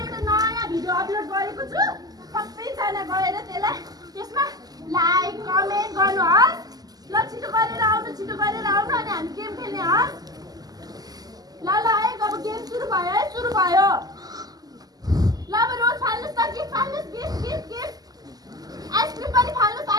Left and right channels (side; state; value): left; late; 0.18 ms